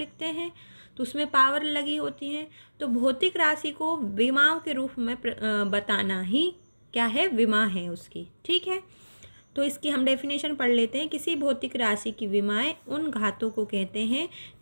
हैं तो उसमें पावर लगी होती है, तो भौतिक राशि को विमाओं के रूप में बताना ही क्या है? विमा है उसकी। ठीक है, तो इसकी हम डेफिनेशन पढ़ लेते हैं। किसी भौतिक राशि की विमाएं उन घातों को कहते हैं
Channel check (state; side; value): inverted; both; correlation -1.00